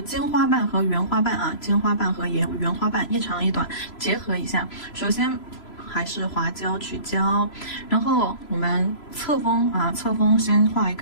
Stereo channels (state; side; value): late; right; 3.0 ms